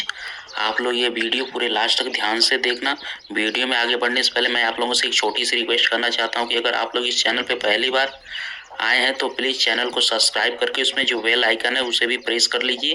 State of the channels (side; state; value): both; identical; correlation 1.00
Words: आप लोग ये वीडियो पूरे लास्ट तक ध्यान से देखना। वीडियो में आगे बढ़ने से पहले मैं आप लोगों से एक छोटी सी रिक्वेस्ट करना चाहता हूँ कि अगर आप लोग इस चैनल पे पहली बार आए हैं तो प्लीज़ चैनल को सब्सक्राइब करके उसमें जो बेल आइकन है उसे भी प्रेस कर लीजिए